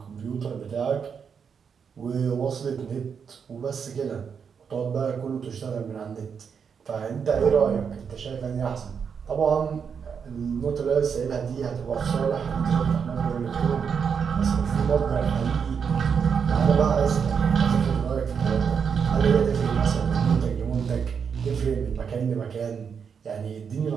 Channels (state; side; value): quieter; left; 6.7 dB